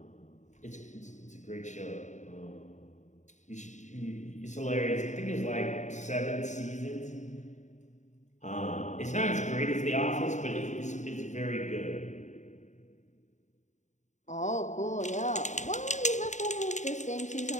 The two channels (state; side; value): late; right; 0.35 ms